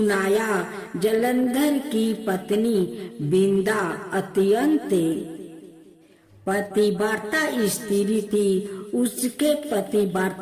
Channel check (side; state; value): both; identical; correlation 1.00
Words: जलंधर की पत्नी वृंदा अत्यंत पतिव्रता स्त्री थी। उसके